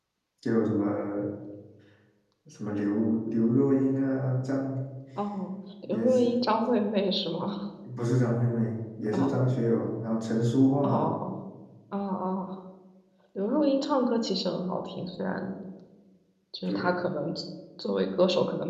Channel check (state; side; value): identical; both; correlation 1.00